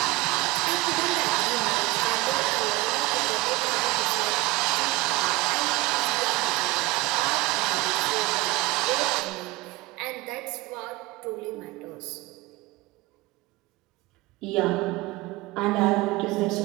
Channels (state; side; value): quieter; left; 21.0 dB